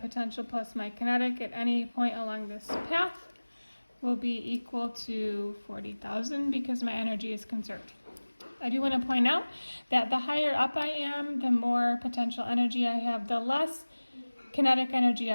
plus my kinetic at any point along this path will be equal to 40,000 because my energy is conserved. I do want to point out that the higher up I am, the more potential energy I have, the less kinetic energy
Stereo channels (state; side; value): inverted; both; correlation -1.00